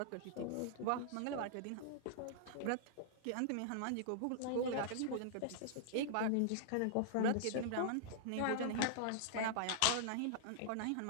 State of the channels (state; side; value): different; both; correlation -0.01